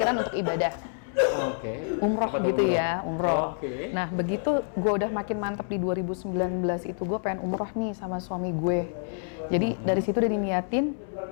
untuk ibadah. Oke. Umroh Apa tuh, gitu umroh? ya, umroh. Oke. Nah begitu gue udah makin mantep di 2019 itu gue pengen umroh nih sama suami gue. Jadi dari situ udah diniatin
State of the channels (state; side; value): silent; right; 60 dB below the other